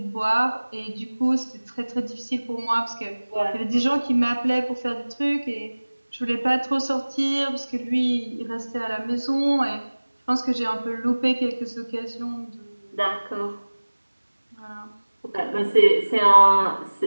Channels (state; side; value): inverted; both; correlation -1.00